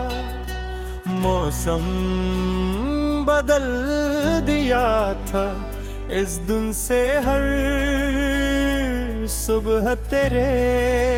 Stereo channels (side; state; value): both; identical; correlation 1.00